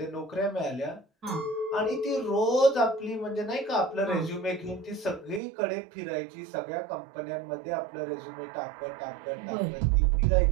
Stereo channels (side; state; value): left; drops out; at 5.4 s